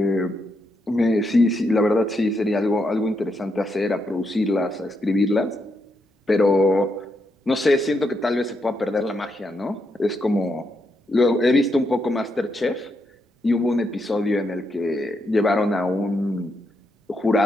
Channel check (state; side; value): normal; both; correlation 0.81